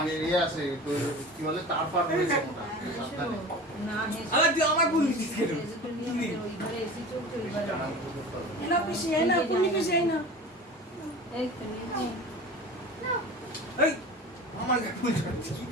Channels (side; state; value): both; normal; correlation 0.36